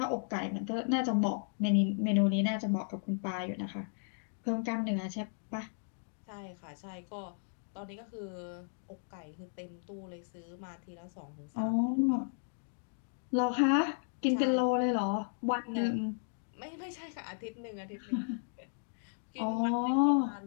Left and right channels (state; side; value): silent; right; digital silence